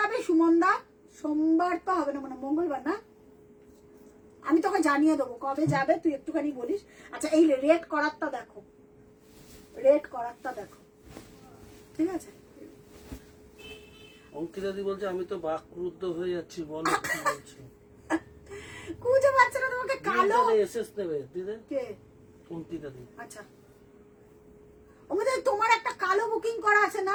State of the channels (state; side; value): identical; both; correlation 1.00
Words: সুমনদা? সোমবার তো হবে না, মানে মঙ্গলবার না, আমি তোকে জানিয়ে দেবো কবে যাবে, তুই একটুখানি বলিস। আচ্ছা এই রেড করারটা দেখো, রেড করারটা দেখো, ঠিক আছে? অঙ্কিতা দি বলছে আমি তো বাকরুদ্ধ হয়ে যাচ্ছি, বলো কি বলছো। খুঁজে পাচ্ছে না তোমাকে, কালো এসএস দেবে দিদি কে? অঙ্কিতা দি। আচ্ছা ওদের তোমার একটা কালো বুকিং করা আছে না,